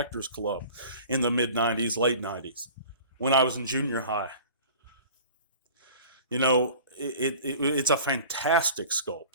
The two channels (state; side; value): inverted; both; correlation -0.42